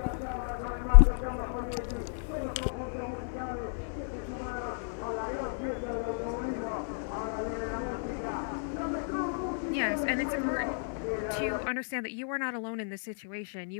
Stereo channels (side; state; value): right; silent; digital silence